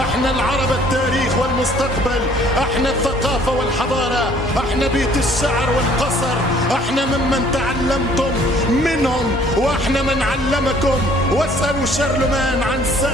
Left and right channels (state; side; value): normal; both; correlation 0.58